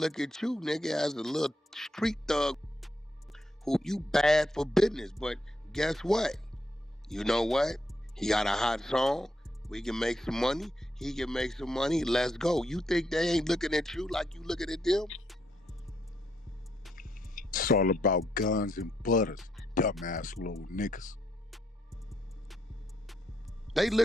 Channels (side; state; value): both; normal; correlation 0.78